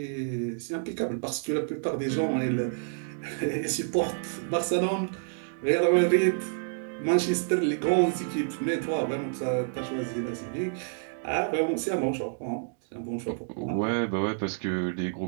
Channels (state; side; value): silent; left; digital silence